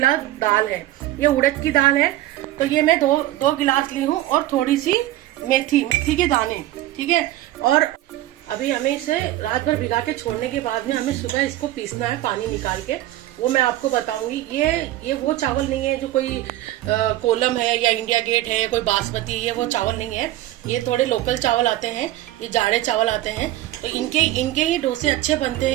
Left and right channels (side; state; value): left; quieter; 15.1 dB